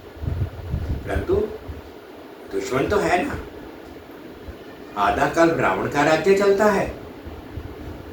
परंतु दुश्मन तो है ना। आधा काल रावण का राज्य चलता है,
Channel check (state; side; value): identical; both; correlation 1.00